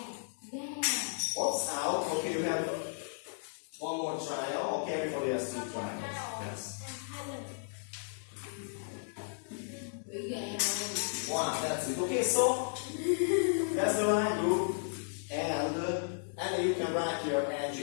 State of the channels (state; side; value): silent; right; digital silence